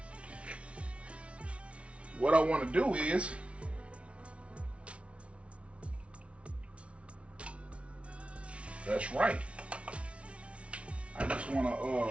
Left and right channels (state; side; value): late; left; 0.061 ms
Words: What I want to do is that's right. I just want